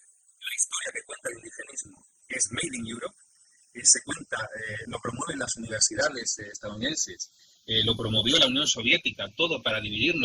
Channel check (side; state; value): both; identical; correlation 1.00